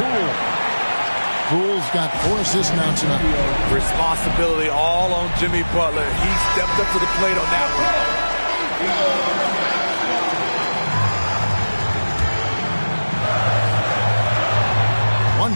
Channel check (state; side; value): inverted; both; correlation -1.00